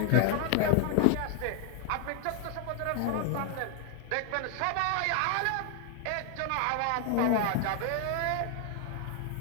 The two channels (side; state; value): both; different; correlation 0.00